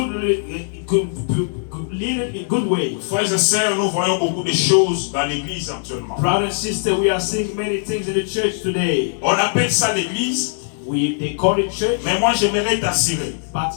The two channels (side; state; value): right; silent; digital silence